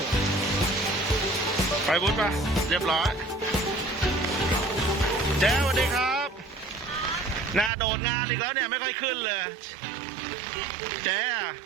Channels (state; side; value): drops out; left; at 7.7 s